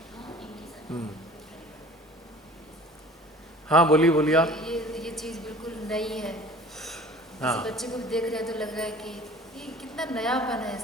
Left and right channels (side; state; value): both; normal; correlation 0.46